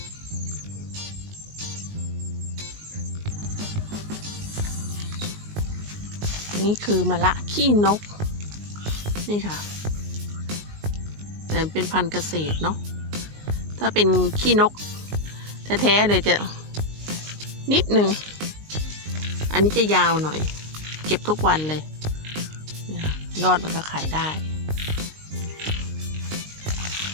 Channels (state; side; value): late; left; 19 ms